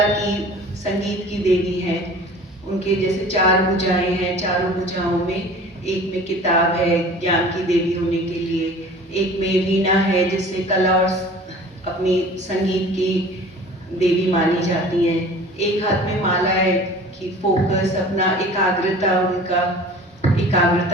की, संगीत की देवी हैं। उनके जैसे 4 भुजाएं हैं, चारों भुजाओं में एक में किताब है ज्ञान की देवी होने के लिए, एक में वीणा है जिससे कला और अपनी संगीत की देवी मानी जाती हैं, एक हाथ में माला है कि फोकस अपना एकाग्रता, उनका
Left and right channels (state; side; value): normal; both; correlation 0.44